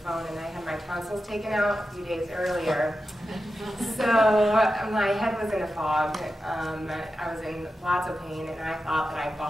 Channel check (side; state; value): both; normal; correlation 0.91